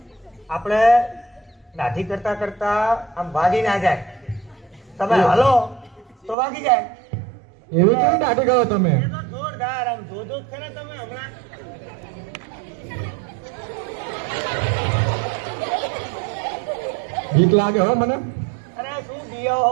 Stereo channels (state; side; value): drops out; left; at 6.4 s